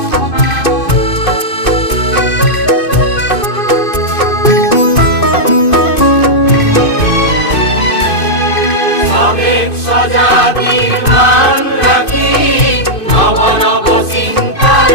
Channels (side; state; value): right; late; 2.5 ms